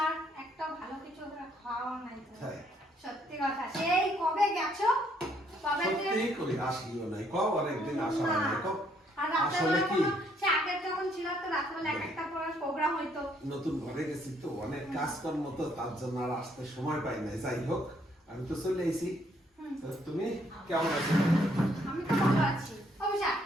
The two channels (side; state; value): both; normal; correlation 0.69